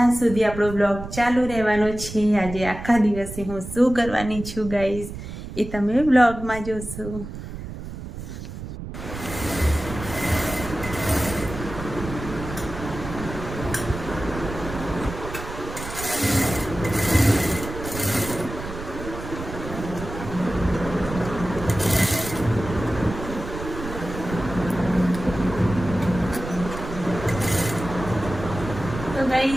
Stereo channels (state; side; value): noise; right; rumble, 9 dB below the sound